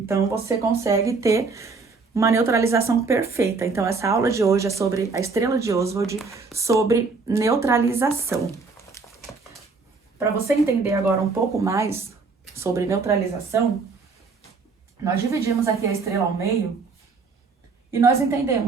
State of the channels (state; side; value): quieter; left; 4.4 dB